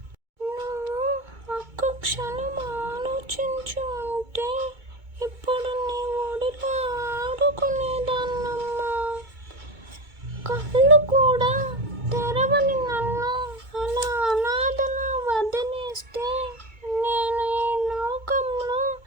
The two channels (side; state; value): left; late; 2.2 ms